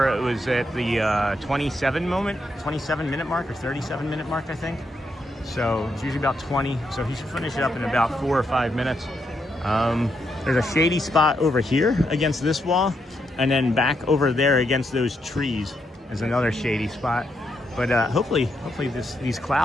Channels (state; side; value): normal; both; correlation 0.80